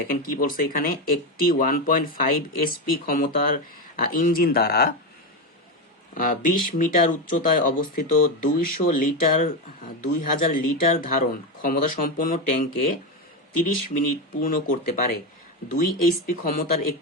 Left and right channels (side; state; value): both; normal; correlation 0.13